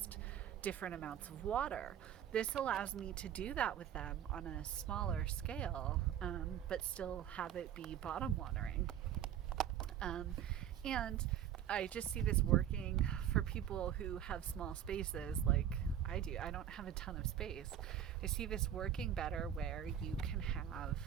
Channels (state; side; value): quieter; left; 10.0 dB